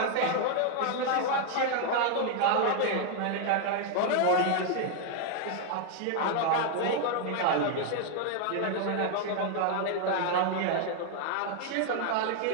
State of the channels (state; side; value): different; both; correlation 0.00